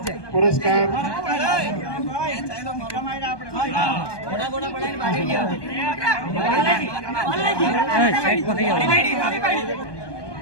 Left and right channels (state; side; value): late; right; 1.2 ms